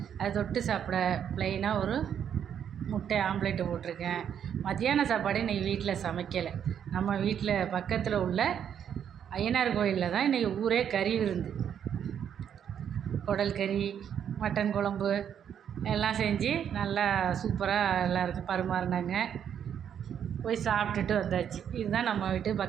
அதை தொட்டு சாப்பிட ப்ளைனாக ஒரு முட்டை ஆம்லேட்டு போட்டிருக்கேன். மத்தியான சாப்பாடு இன்றைக்கி வீட்டில் சமைக்கலை. நம்ம வீட்டில் பக்கத்தில் உள்ள ஐயனார் கோயிலில் தான் இன்றைக்கி ஊரே கறி விருந்து. குடல் கறி, மட்டன் குழம்பு எல்லாம் செஞ்சு நல்லா சூப்பராக எல்லாருக்கும் பரிமாறினாங்க. போய் சாப்பிட்டுட்டு வந்தாச்சு. இதுதான் நம்ம வீட்டு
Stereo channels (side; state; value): left; quieter; 8.8 dB